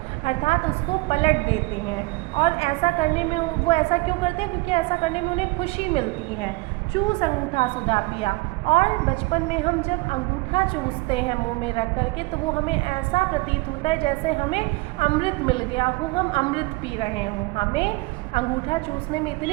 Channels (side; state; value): left; quieter; 23.8 dB